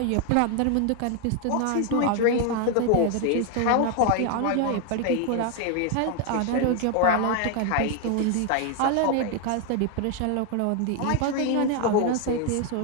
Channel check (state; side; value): different; both; correlation 0.01